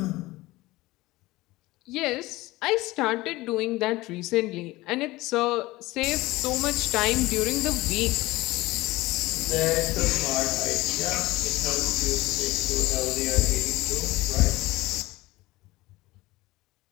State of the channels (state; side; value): quieter; right; 19.4 dB